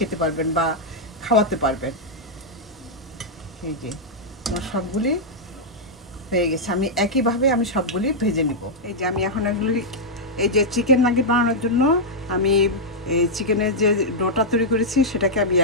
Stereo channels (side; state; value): both; normal; correlation -0.06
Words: পারবেন বা খাওয়াতে পারবেন। এই যে আমার সবগুলি হয়ে গেছে, আমি একইভাবে আমি সবগুলি ভেজে নিব। এই যে আমি এখন এগুলি, এই যে চিকেন নাগেট বানানোর জন্য আমি এই চিকেনের যে ডোটা তৈরি করেছি সেটাকে আমি